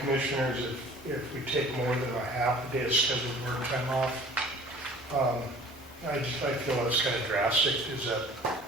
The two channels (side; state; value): both; normal; correlation 0.48